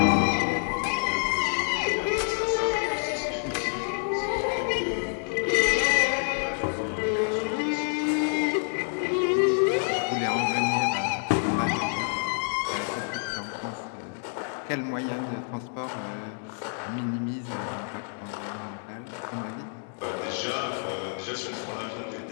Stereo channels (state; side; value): silent; right; 59 dB below the other